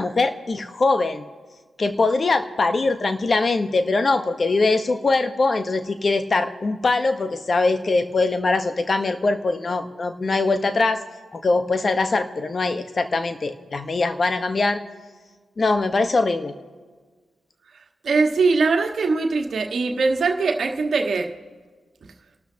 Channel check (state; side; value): normal; both; correlation 0.91